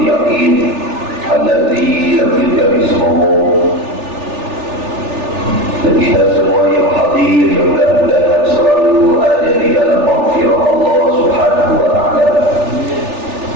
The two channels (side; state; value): left; late; 3.4 ms